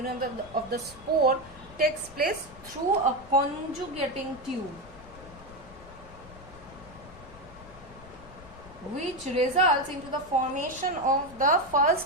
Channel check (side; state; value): left; noise; rumble, 20 dB below the sound